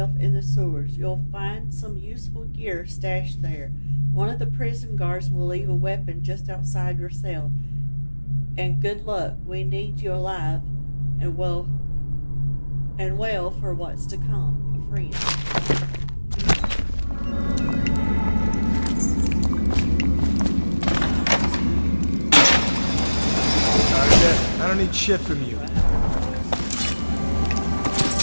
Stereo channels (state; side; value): inverted; both; correlation -1.00